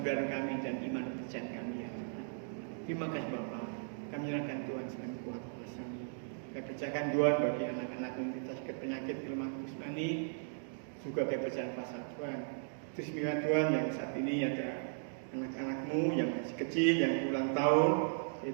kami dan iman percayaan kami ya Tuhan. Terima kasih Bapak. Kami nyerahkan Tuhan sebagai kuat kuasa-Mu. Kami percayakan Tuhan bagi anak-anak yang sakit penyakit kelemahan jasmani, juga kami percaya kuasa Tuhan. Terus minta Tuhan yang saat ini ada anak-anak-Mu yang masih kecil yang ulang tahun,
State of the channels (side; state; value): left; silent; digital silence